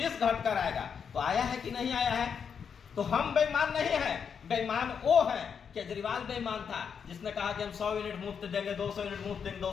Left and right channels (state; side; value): quieter; right; 6.9 dB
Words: घट कर आएगा। तो आया है कि नहीं आया है? तो हम बेईमान नहीं है, बेईमान वो है। केजरीवाल बेईमान था जिसने कहा कि हम 100 यूनिट मुफ्त देंगे, 200 यूनिट मुफ्त देंगे,